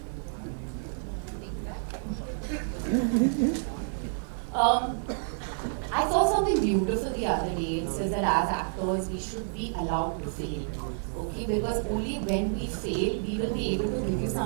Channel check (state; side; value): silent; left; digital silence